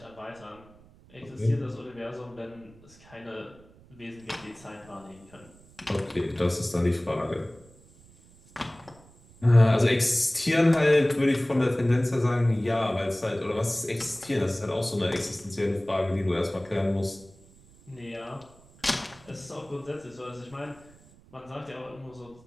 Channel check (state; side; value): noise; right; rumble, 25 dB below the sound